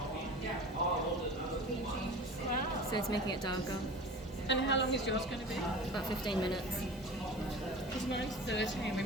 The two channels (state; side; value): normal; both; correlation 0.36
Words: So it's making it darker. And how long is yours going to be? About 15 minutes. Because mine's 30 and we